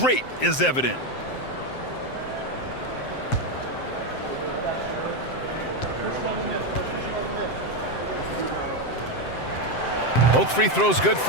is evident. Both free throws good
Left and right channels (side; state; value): right; late; 7.7 ms